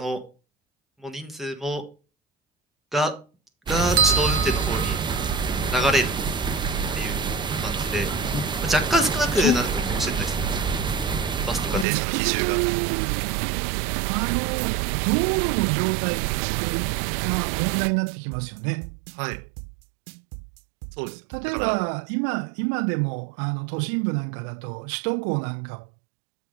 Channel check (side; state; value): left; drops out; at 11.9 s